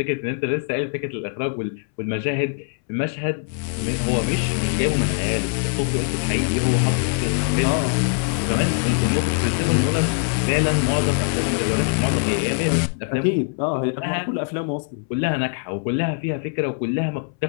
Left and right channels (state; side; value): silent; right; 63 dB below the other